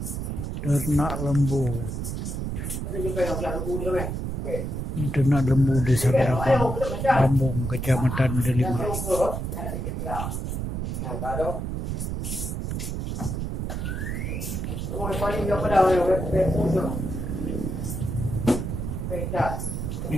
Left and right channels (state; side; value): noise; right; rumble, 3 dB below the sound